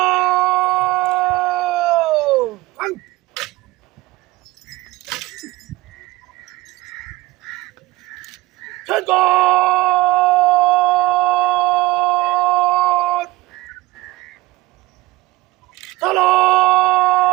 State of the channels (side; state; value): left; quieter; 20.1 dB